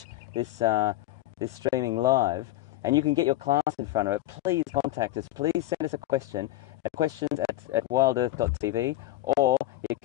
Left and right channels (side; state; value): right; quieter; 15.6 dB